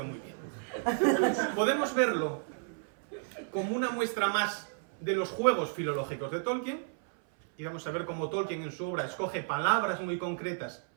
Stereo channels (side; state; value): left; silent; 56 dB below the other